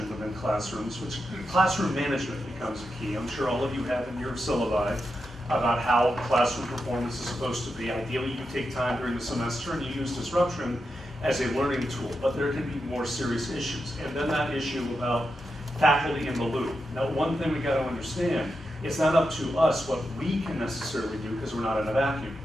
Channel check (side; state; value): both; normal; correlation 0.87